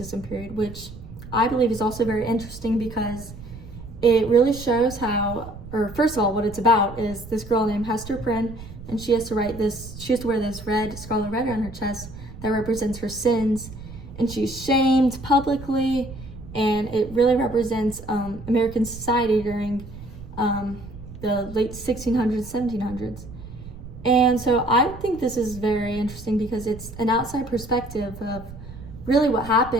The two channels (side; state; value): right; noise; rumble, 14 dB below the sound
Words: period, which I believe is also very interesting because it really shows how, or first of all, what it's about is this girl named Hester Prynne, and she has to wear this scarlet letter on her chest that represents her sins, and she's shamed publicly, and it really represents American society during the late 1600s, 1700s. And so I think this is very interesting because it's an outside perspective of really what